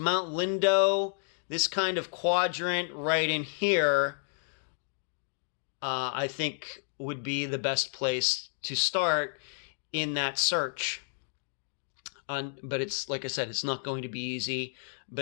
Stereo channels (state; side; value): silent; right; digital silence